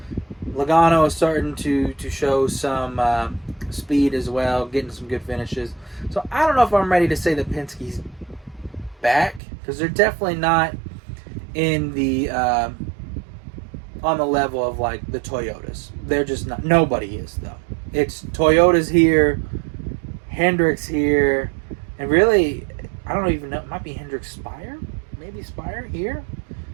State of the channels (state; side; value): drops out; left; at 9.4 s